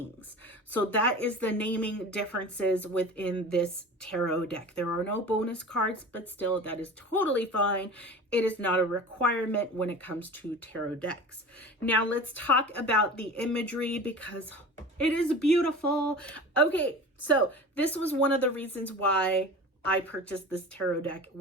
So that is the naming differences within this tarot deck. There are no bonus cards, but still that is totally fine. It is not a requirement when it comes to tarot decks. Now let's talk about the imagery because it is beautiful. Okay, so this was one of the reasons why I purchased this tarot deck,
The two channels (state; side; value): normal; both; correlation 0.36